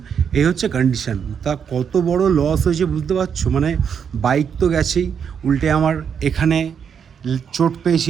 এই হচ্ছে কন্ডিশান। তা কত বড় লস হয়েছে বুঝতে পারছো? মানে বাইক তো গেছেই, উল্টে আমার এখানে চোট পেয়েছি।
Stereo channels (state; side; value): quieter; left; 7.3 dB